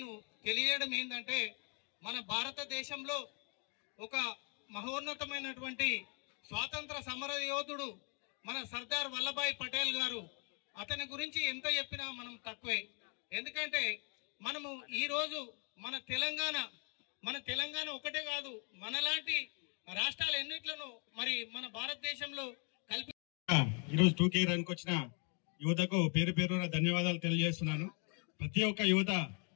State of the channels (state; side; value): quieter; right; 37.5 dB